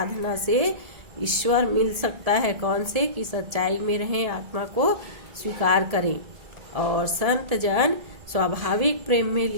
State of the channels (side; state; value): left; late; 1.7 ms